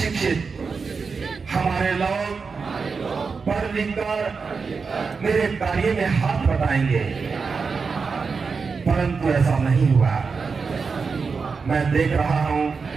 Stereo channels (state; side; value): quieter; left; 5.0 dB